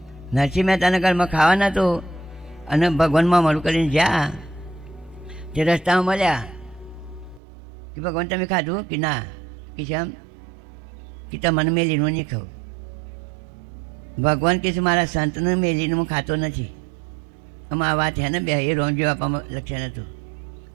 નરસિંહ મહેતાના ઘરમાં ખાવાના તો અને ભગવાનમાં મળું કરીને જ્યાં તે રસ્તામાં મળ્યા કે ભગવાન તમે ખાધું કે ના? કે કેમ? કે તમને મેલીનું નહીં ખાવું. ભગવાન કહે છે મારા સંતનું મેલીનું હું ખાતો નથી. આમાં આ વાત છે ને બે એ રોમજી બાપામાં લક્ષણ હતું.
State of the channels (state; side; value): drops out; left; at 7.4 s